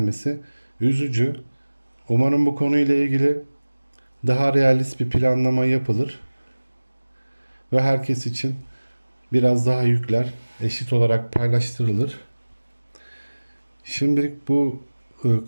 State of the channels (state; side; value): inverted; both; correlation -1.00